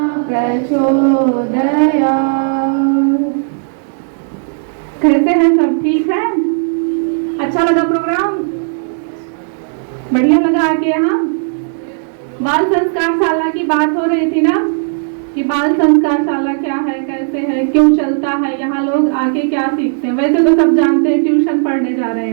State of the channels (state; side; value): silent; left; digital silence